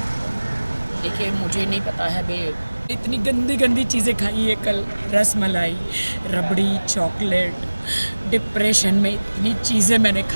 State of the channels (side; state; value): both; inverted; correlation -1.00